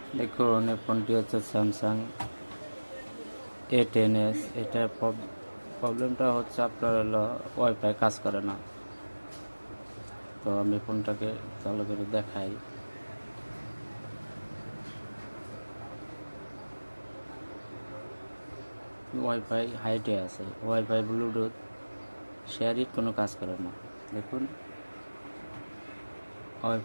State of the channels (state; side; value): inverted; both; correlation -1.00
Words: দেখুন এই ফোনটি হচ্ছে স্যামসাং A10s। এটার প্রবলেমটা হচ্ছে আপনার হলো ওয়াইফাই কাজ করে না। তো আমি ফোনটাকে চালু করে দেখাই। ওয়াইফাই হাইটে আছে, ওয়াইফাই ব্লুটুথ শেয়ারিট কোনো কাজ করে না। দেখুন